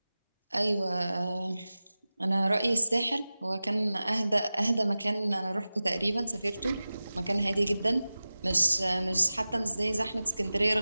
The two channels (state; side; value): inverted; both; correlation -0.96